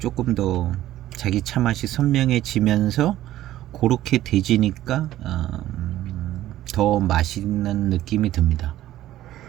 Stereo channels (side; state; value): left; quieter; 14.0 dB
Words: 더 자기 차 맛이 선명해지면서 그렇게 돼지니까 더 맛있는 느낌이 듭니다.